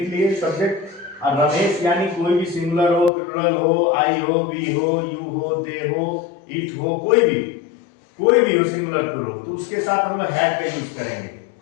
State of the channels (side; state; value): right; drops out; at 3.1 s